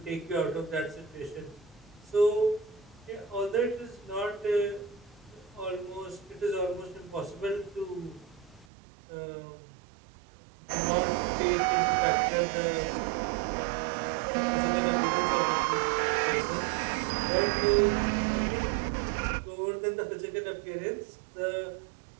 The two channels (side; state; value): left; drops out; at 8.7 s